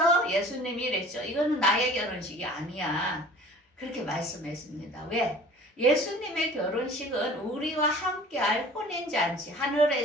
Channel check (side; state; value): both; normal; correlation 0.46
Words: 예수님이 이랬죠. 이거는 나의 결혼식이 아니야. 그렇게 말씀했습니다. 왜? 예수님의 결혼식은 우리와 함께할 혼인잔치,